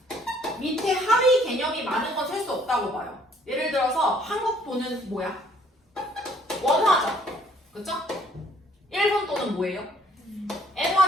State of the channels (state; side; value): normal; both; correlation 0.61